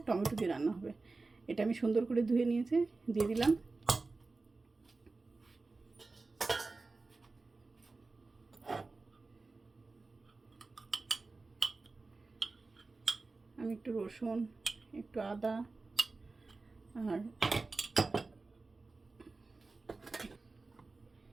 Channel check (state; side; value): quieter; left; 3.7 dB